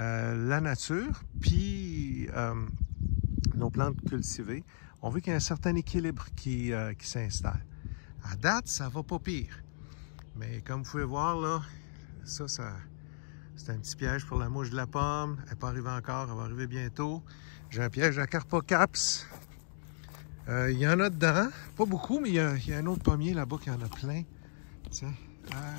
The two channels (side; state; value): right; silent; digital silence